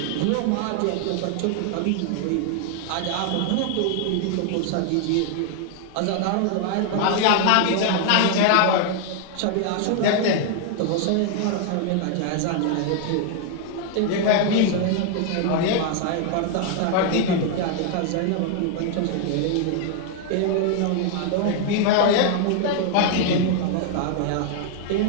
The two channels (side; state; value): both; different; correlation 0.00